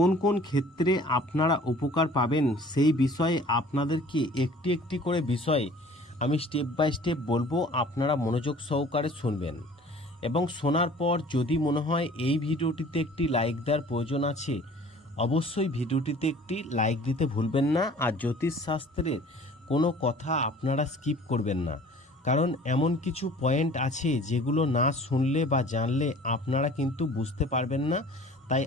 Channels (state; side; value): normal; both; correlation 0.49